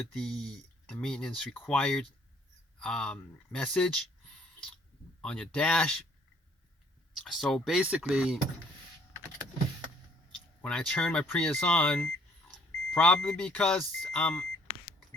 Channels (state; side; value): normal; both; correlation 0.61